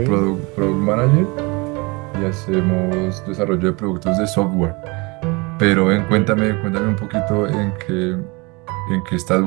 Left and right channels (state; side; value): quieter; left; 27.0 dB